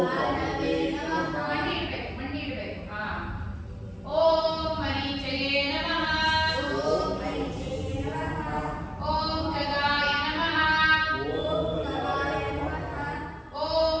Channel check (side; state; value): both; identical; correlation 1.00